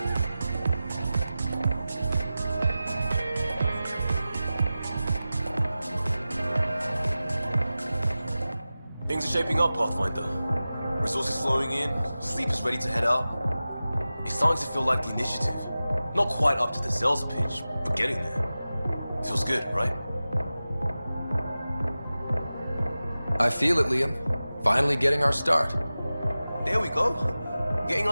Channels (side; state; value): both; inverted; correlation -0.96